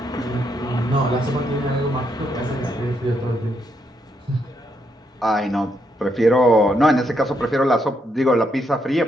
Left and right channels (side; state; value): both; normal; correlation 0.77